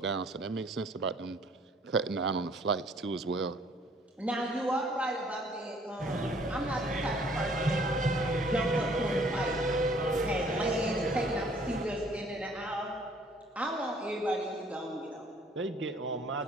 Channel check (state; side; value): normal; both; correlation 0.59